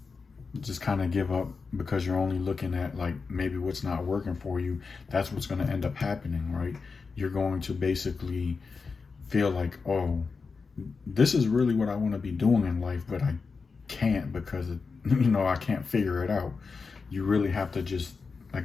just kind of give up because you're only looking at like maybe what's not working for you, that's what's going to end up happening, right? You're going to basically feel like, oh, this is really what I want to be doing in life, but can't because I can't figure it out. You really have to just,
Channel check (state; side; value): quieter; right; 4.8 dB